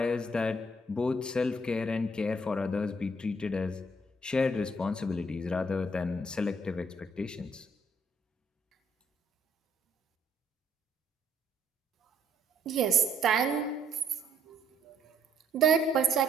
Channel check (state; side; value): normal; both; correlation 0.67